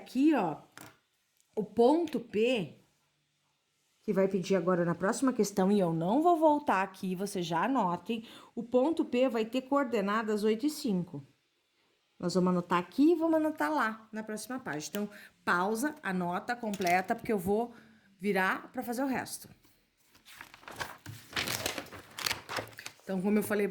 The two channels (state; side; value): identical; both; correlation 1.00